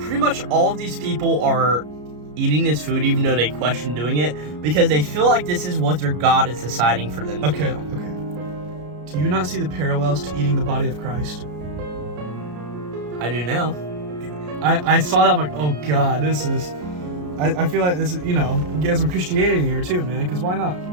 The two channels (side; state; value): left; late; 33 ms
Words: much all of these people are eating this food even though they question doing it because they feel like this is what their god is deciding for them to do. Okay. Do you not see the parallels to eating the body of Christ? I do now. I saw that, I'm like, oh god, this is... I feel like this is, get some Christianity here too, man, because why not?